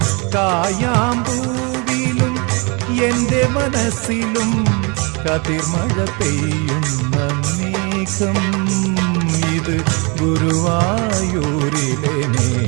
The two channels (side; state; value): left; quieter; 30.8 dB